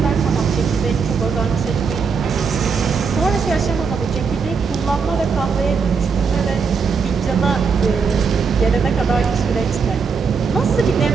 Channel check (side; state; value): left; quieter; 5.5 dB